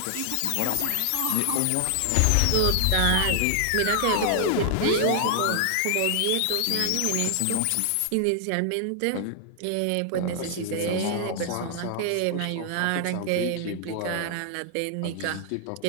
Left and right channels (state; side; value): different; both; correlation 0.00